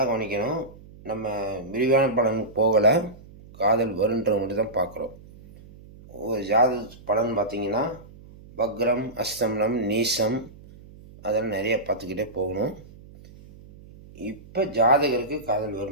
கவனிக்கணும். நம்ம விரிவான பலன் போகலை, காதல் வருன்றவங்க மட்டும் தான் பார்க்குறோம். ஒரு ஜாதக பலன் பார்த்திங்கன்னா வக்ரம், அஸ்தமனம், நீசம் அதெல்லாம் நிறைய பார்த்துக்கிட்டே போகணும். இப்போ ஜாதகருக்கு காதல்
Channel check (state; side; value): noise; right; hum, 20 dB below the sound